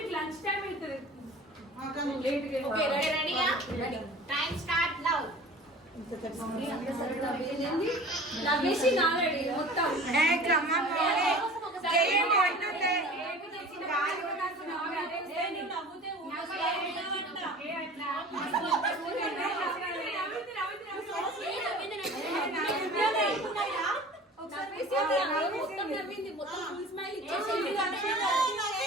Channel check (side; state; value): both; normal; correlation 0.42